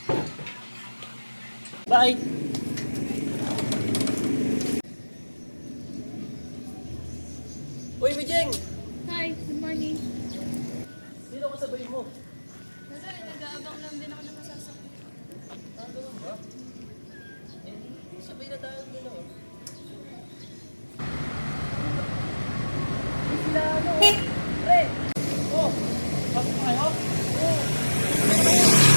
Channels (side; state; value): both; inverted; correlation -1.00